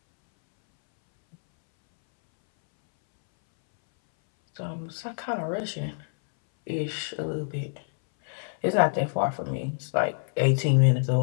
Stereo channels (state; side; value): silent; right; 60 dB below the other